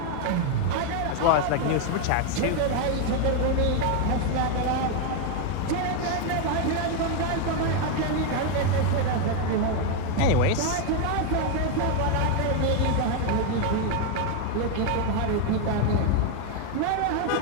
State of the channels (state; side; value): different; both; correlation 0.01